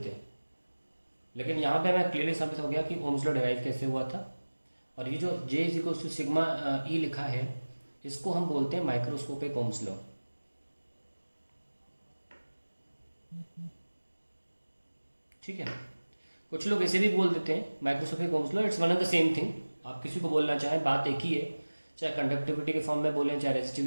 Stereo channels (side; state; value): both; inverted; correlation -1.00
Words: हैं, लेकिन यहाँ पे हमें क्लियरली साबित हो गया कि Ohm's law डिराइव कैसे हुआ था. और ये जो J is equals to sigma E लिखा है, इसको हम बोलते हैं माइक्रोस्कोपिक Ohm's law. ठीक है, कुछ लोग ऐसे भी बोल देते हैं microscopic Ohm's law. It's one of the same thing. आप किसी को बोलना चाहें, बात एक ही है, चाहे कंडक्टिविटी के फॉर्म में बोलें चाहे